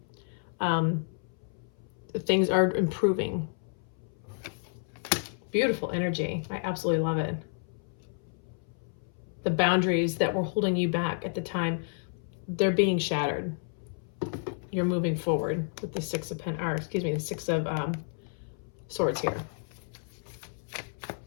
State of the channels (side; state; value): right; silent; 57 dB below the other